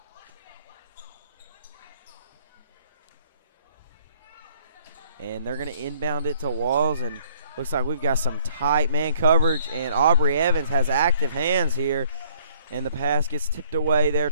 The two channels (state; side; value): inverted; both; correlation -0.59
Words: And they're going to inbound it to Walls, and looks like we've got some tight man coverage, and Aubrey Evans has active hands here, and the pass gets tipped away there